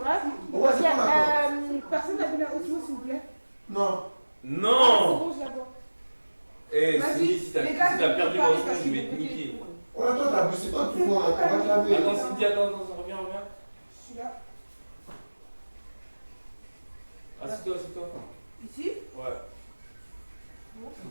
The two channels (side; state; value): both; inverted; correlation -1.00